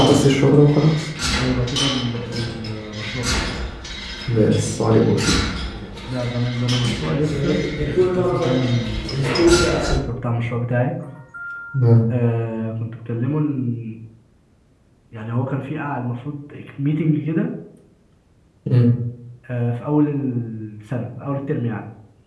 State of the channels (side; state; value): both; identical; correlation 1.00